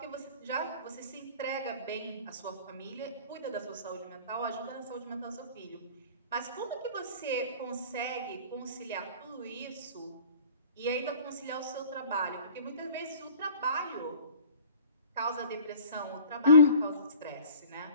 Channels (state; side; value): inverted; both; correlation -0.47